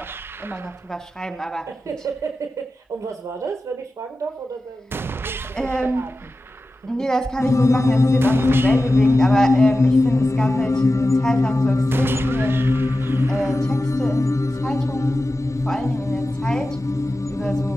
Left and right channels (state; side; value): normal; both; correlation 0.94